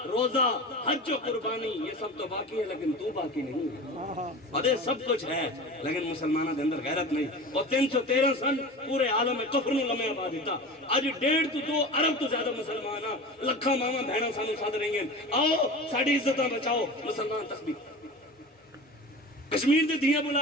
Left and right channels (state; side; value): normal; both; correlation 0.33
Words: روزہ حج و قربانی یہ سب تو باقی ہے لیکن تو باقی نہیں ہے ادھے سب کچھ ہے لیکن مسلمانہ دے اندر غیرت نہیں اور 313 سن پورے عالم میں کفر نو لمحے آباد دیتا اج 1.5 تو 2 ارب تو زیادہ مسلمان ہاں لکھاں ماما بہناں سانو سد رہی ہیں آؤ ساڈی عزتاں بچاؤ مسلمان تسبیح کشمیر دے دھیاں